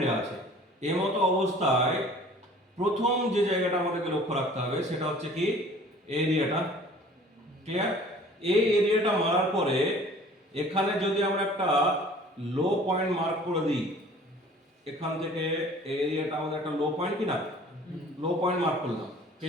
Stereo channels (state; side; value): normal; both; correlation 0.49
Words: আছে, এই মতো অবস্থায় প্রথম যে জায়গাটা আমাদেরকে লক্ষ্য রাখতে হবে সেটা হচ্ছে কি? এরিয়াটা, ক্লিয়ার? এই এরিয়াটা মারার পরে এখানে যদি আমরা একটা লো পয়েন্ট মার্ক করে দিই, এখান থেকে এই এরিয়াটা আমাদের একটা লো পয়েন্ট কি না? লো পয়েন্ট মার্ক করলাম,